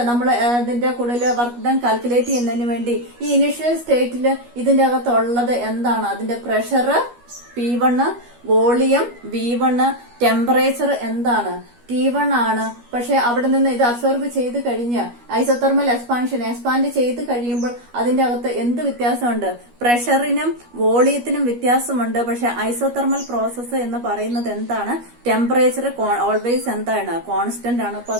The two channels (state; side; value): late; left; 12 ms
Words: ഇതിന്റെ കൂടുതൽ വർക്ക് ഡൺ കാൽക്കുലേറ്റ് ചെയ്യുന്നതിന് വേണ്ടി ഈ ഇനിഷ്യൽ സ്റ്റേറ്റിൽ ഇതിന്റെ അകത്തുള്ളത് എന്താണ്, അതിന്റെ pressure P1, volume V1, temperature എന്താണ് T1 ആണ്. പക്ഷെ അവിടെ നിന്ന് ഇത് അബ്സോർബ് ചെയ്ത് കഴിഞ്ഞ് ഐസോതെർമൽ എക്സ്പാൻഡ് ചെയ്ത് കഴിയുമ്പോൾ അതിന്റെ അകത്ത് എന്ത് വ്യത്യാസമുണ്ട്, പ്രഷറിനും വോളിയത്തിനും വ്യത്യാസമുണ്ട്. പക്ഷെ ഐസോതെർമൽ പ്രോസസ്സ് എന്ന് പറയുന്നത് എന്താണ്, ടെമ്പറേച്ചർ ഓൾവേസ് എന്താണ്, കോൺസ്റ്റന്റ് ആണ്. അപ്പൊ